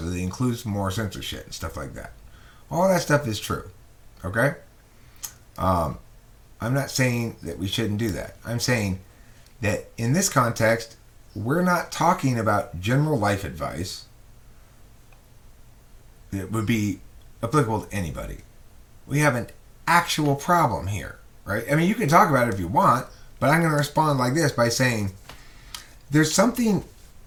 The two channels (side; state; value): both; identical; correlation 1.00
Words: that it includes more censorship and stuff like that. All that stuff is true. Okay? I'm not saying that we shouldn't do that. I'm saying that in this context, we're not talking about general life advice that would be applicable to anybody. We have an actual problem here, right? You can talk about it if you want, but I'm going to respond like this by saying there's something